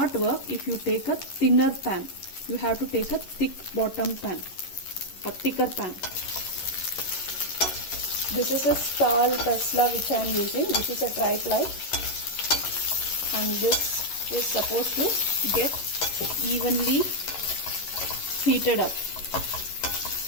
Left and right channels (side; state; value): right; late; 11 ms